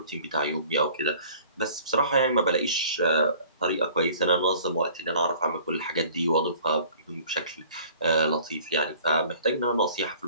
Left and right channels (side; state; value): both; inverted; correlation -0.50